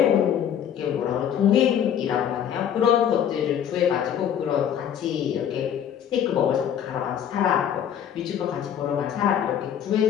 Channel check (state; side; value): quieter; right; 9.2 dB